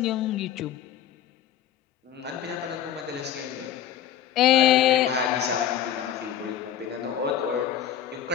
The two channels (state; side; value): quieter; right; 10.1 dB